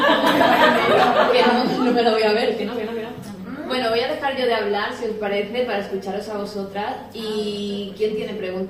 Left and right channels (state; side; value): identical; both; correlation 1.00